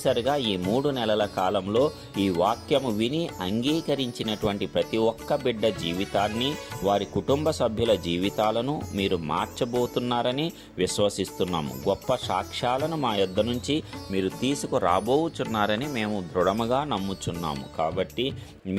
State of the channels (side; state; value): both; identical; correlation 1.00